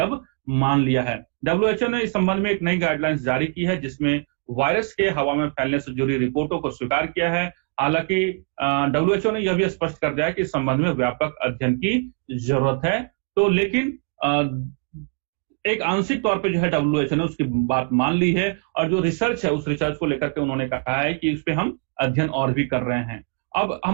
मान लिया है। WHO ने इस संबंध में एक नई गाइडलाइंस जारी की है जिसमें वायरस के हवा में फैलने से जुड़ी रिपोर्टों को स्वीकार किया है। हालांकि WHO ने यह भी स्पष्ट कर दिया है कि इस संबंध में व्यापक अध्ययन की जरूरत है। तो लेकिन एक आंशिक तौर पे जो है WHO ने उसकी बात मान ली है और जो रिसर्च है उस रिसर्च को लेकर के उन्होंने कहा है कि उस पे हम अध्ययन और भी कर रहे हैं। अब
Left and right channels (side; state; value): left; quieter; 35.4 dB